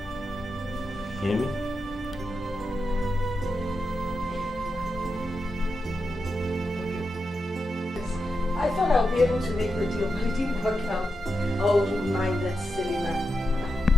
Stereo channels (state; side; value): normal; both; correlation 0.88